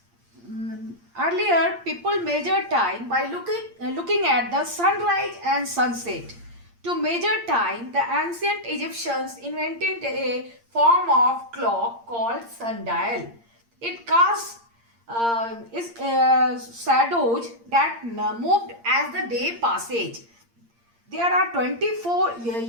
people measured time by looking at the sunrise and sunset. To measure time, the ancient Egyptians invented a form of clock called sundial. It casts shadows that moved as the day passage. There are 24,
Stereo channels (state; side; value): late; left; 8.6 ms